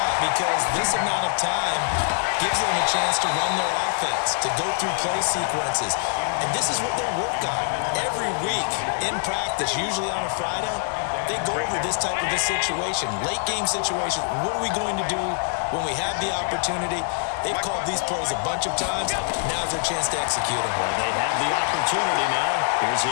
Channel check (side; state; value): right; silent; digital silence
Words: because this amount of time gives them a chance to run their offense, to go through play sequences. And this is what they work on every week in practice, usually on a Friday. They go over this type of a situation, late game situation. What are we going to do when we have the opportunity? They've called these plays a bunch of times. Now's their chance to execute them. Well, they have the opportunity now. Here's